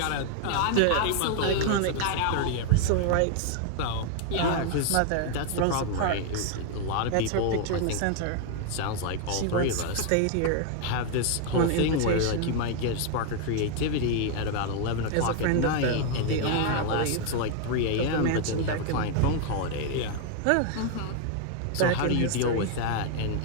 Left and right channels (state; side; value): different; both; correlation 0.00